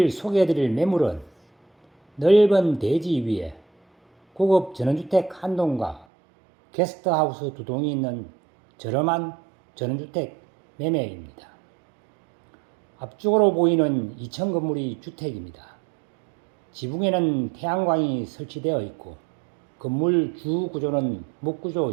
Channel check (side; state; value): left; drops out; at 6.1 s